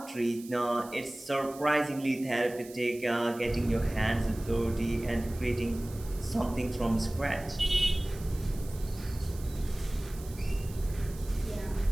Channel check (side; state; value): right; noise; hiss, 19 dB below the sound